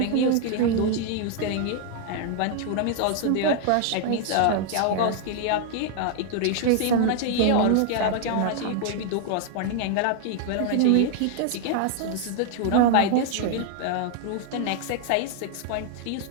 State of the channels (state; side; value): different; both; correlation 0.00